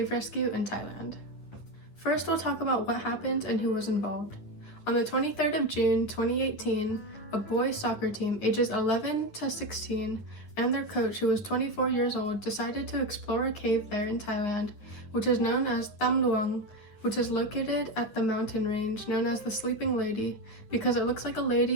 Rescue in Thailand. First, we'll talk about what happened and who was involved. On the 23rd of June 2018, a boys soccer team ages 11 to 16 and their coach, who was 24 years old, decided to explore a cave there in Thailand, which is known as Tham Luang, which is located at the mountain range known as the Sleeping Lady because it looks like a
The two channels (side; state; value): right; late; 9.9 ms